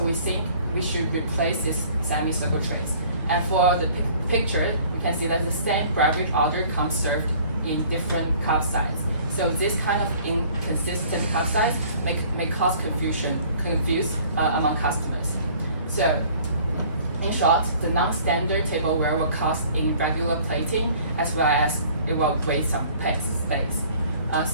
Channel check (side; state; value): both; inverted; correlation -0.53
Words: we think we should replace this semi-circle trays. And for the picture, you can see that the same beverage order comes served in different cup size. So this kind of inconsistent cup size may cause confuse among customers. So in short, the non-standard tableware will cost in regular plating as well as it will waste some space.